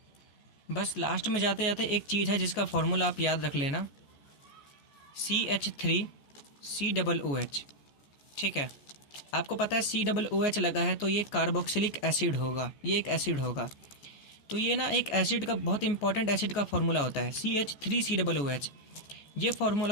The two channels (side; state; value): right; late; 14 ms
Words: बस लास्ट में जाते जाते एक चीज़ है जिसका फॉर्मूला आप याद रख लेना, CH3COOH। ठीक है, आपको पता है COOH लगा है तो ये कार्बोक्सिलिक एसिड होगा, ये एक एसिड होगा। तो ये ना एक एसिड का बहुत इंपॉर्टेंट एसिड का फॉर्मूला होता है CH3COOH। ये